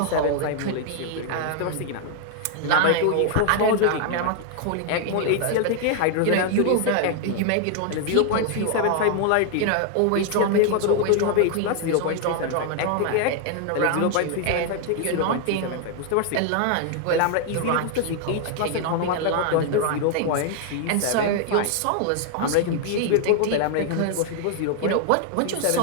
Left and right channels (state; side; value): different; both; correlation 0.00